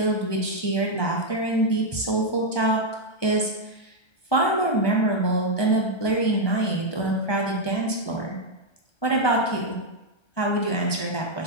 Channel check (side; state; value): right; late; 1.3 ms